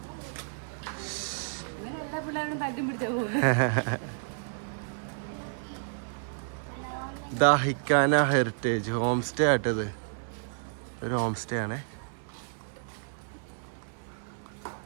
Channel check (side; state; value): left; silent; digital silence